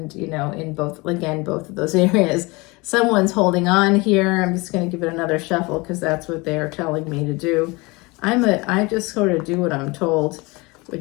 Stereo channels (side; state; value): right; quieter; 25.1 dB